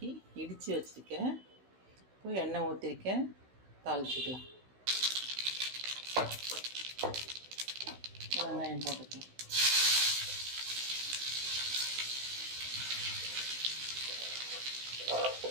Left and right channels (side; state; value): left; late; 16 ms